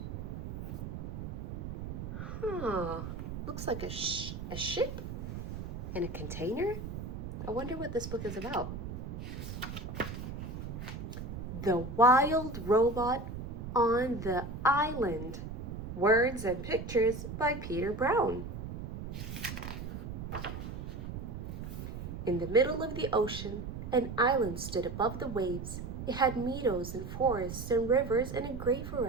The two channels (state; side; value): noise; right; rumble, 7 dB below the sound